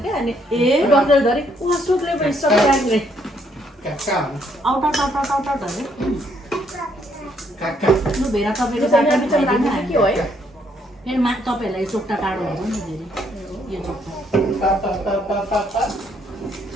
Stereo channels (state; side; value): normal; both; correlation 0.70